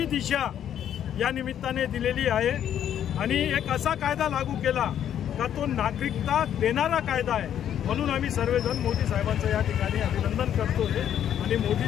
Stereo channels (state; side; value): quieter; right; 10.0 dB